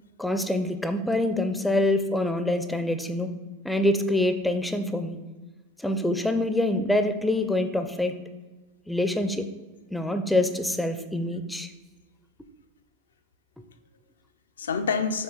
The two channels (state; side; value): normal; both; correlation 0.61